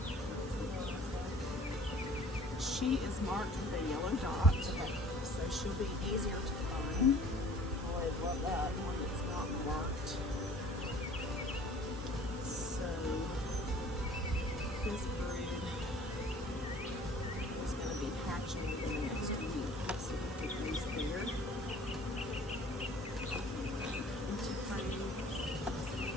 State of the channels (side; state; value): both; normal; correlation 0.51